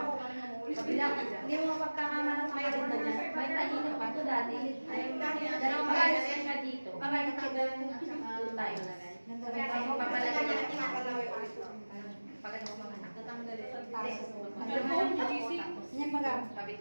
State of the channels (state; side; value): inverted; both; correlation -1.00